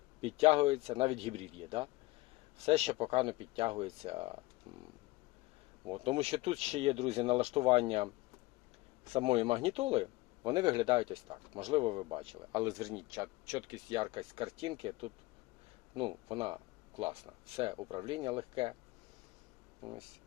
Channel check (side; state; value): right; quieter; 20.8 dB